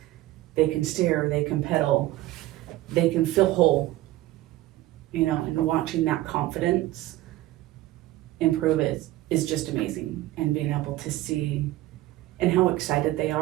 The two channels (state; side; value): quieter; left; 16.2 dB